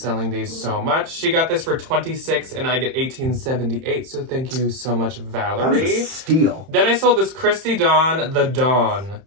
these so much. She got this for $26 and I get $18.78, so thank you so much, Valerie. That was a steal. Then I sold this Christy Dawn, the Dawn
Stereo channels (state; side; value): late; left; 31 ms